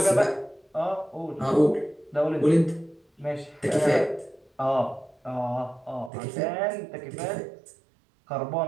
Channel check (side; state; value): left; drops out; at 6.1 s